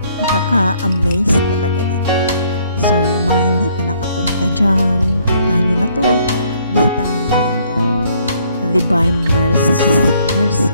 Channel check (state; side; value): inverted; both; correlation -0.65